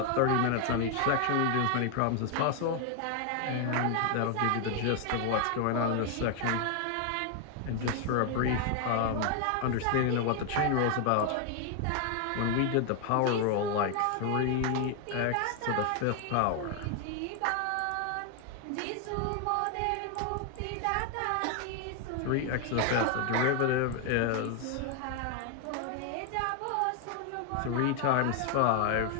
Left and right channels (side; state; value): both; different; correlation 0.00